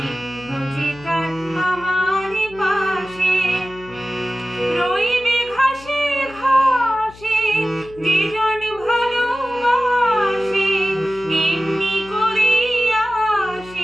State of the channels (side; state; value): left; noise; hum, 21 dB below the sound